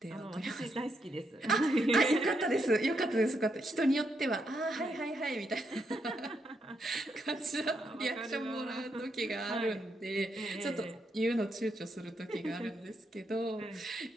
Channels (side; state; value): both; normal; correlation 0.80